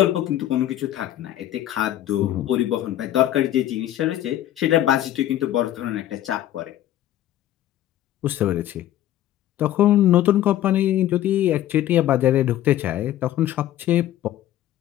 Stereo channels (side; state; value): right; quieter; 12.9 dB